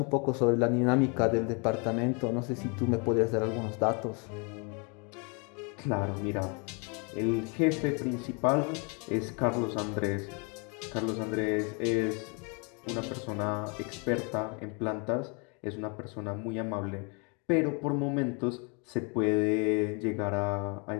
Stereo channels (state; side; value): quieter; right; 34.1 dB